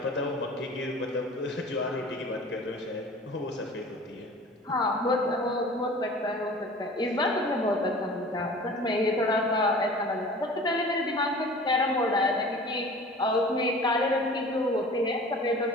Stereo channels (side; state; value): both; normal; correlation 0.43